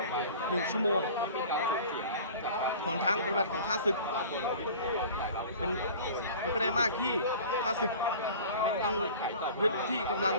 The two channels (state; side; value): inverted; both; correlation -0.41